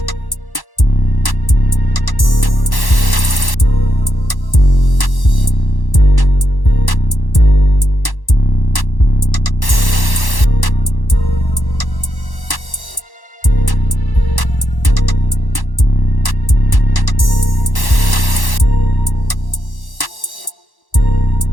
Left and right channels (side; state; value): right; late; 1.1 ms